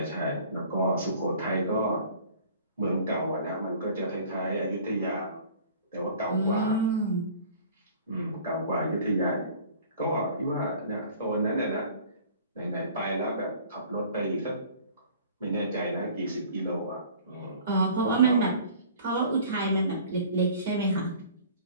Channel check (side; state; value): both; inverted; correlation -0.48